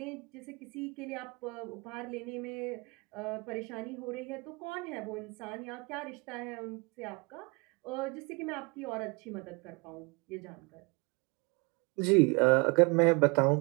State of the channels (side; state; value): left; quieter; 29.5 dB